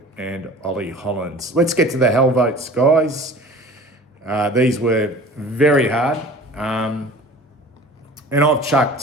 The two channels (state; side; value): normal; both; correlation 0.43